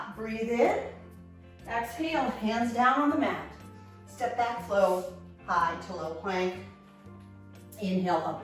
breathe in. Exhale, hands down on the mat. Step back, flow, high to low plank. Inhale,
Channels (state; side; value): identical; both; correlation 1.00